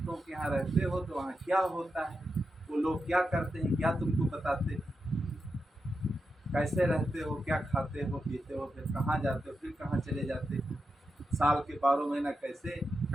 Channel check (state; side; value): normal; both; correlation 0.88